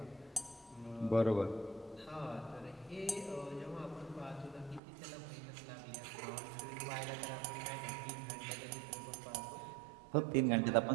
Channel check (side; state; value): left; drops out; at 4.8 s